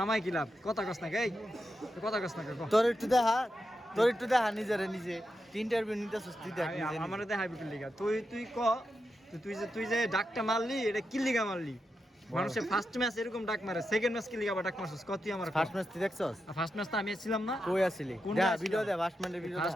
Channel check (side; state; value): both; normal; correlation 0.87